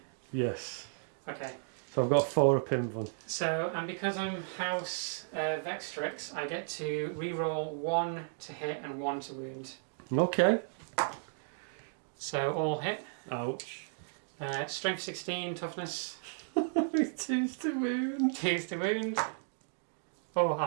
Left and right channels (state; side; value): silent; left; digital silence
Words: Yes. Okay. So I've got 4 up in them. So, and because I'm House Vextrix, I get to re-roll 1 to hit and 1 to wound. Okay. So all hit. Ouch. Strength 16, toughness. 2s to wound. 2s to wound. Oh,